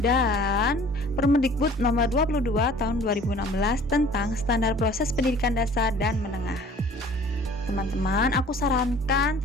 dan Permendikbud nomor 22 tahun 2016 tentang standar proses pendidikan dasar dan menengah. Teman-teman, aku sarankan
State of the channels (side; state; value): both; normal; correlation 0.50